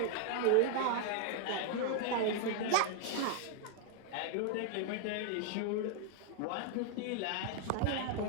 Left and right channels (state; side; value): different; both; correlation 0.00